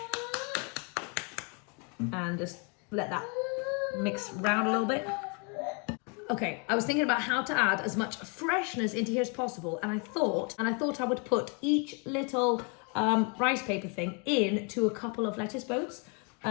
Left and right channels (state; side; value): quieter; right; 35.4 dB